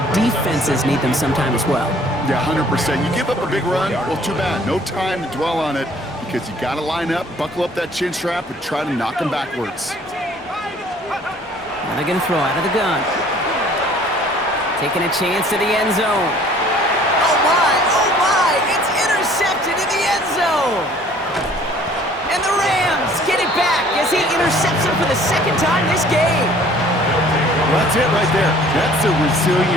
defenses need them sometime as well. Yeah, 100%. You give up a big run, well, too bad. No time to dwell on it because you got to line up, buckle up that chin strap, and try to knock them backwards. Now they're going to throw out of the gun. Taking a chance to the end zone. Oh, my, it's intercepted in the end zone. And the Rams get it back as he intercepts him for the 2nd time this game. That's it right there. That's the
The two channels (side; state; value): both; normal; correlation 0.55